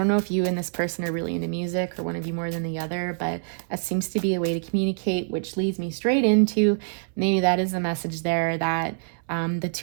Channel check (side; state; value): left; silent; 61 dB below the other